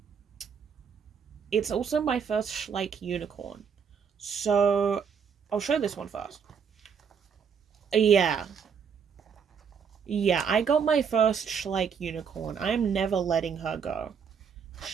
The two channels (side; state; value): left; quieter; 6.8 dB